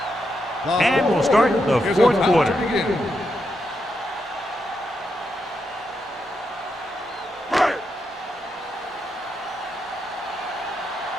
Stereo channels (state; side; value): normal; both; correlation 0.83